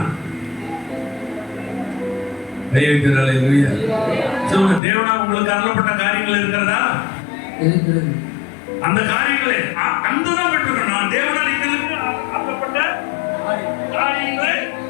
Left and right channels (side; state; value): right; drops out; at 4.8 s